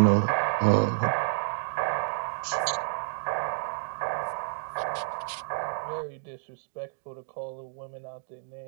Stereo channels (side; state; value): left; silent; digital silence